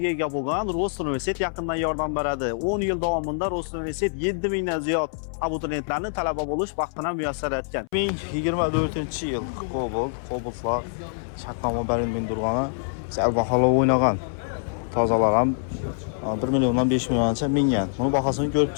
ega bo'lgan Rost universitet yaqindan yordam beradi. 10 yil davomida Rost universitet 7000 dan ziyod abituriyentlarni talaba bo'lish baxtini muyassar etgan. 2024-yil Cobalt'lar shartnoma berilgan turgani sal bahola o'ynagan. Tozalar ham 1 milliondan 5 milliongacha mingan. Buni bahosini ko'rib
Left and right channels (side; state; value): right; silent; 61 dB below the other